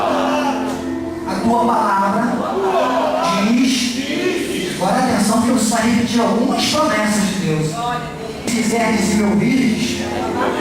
A tua palavra diz, agora atenção que eu preciso repetir algumas promessas de Deus. Se quiseres e me ouvires,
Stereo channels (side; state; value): both; identical; correlation 1.00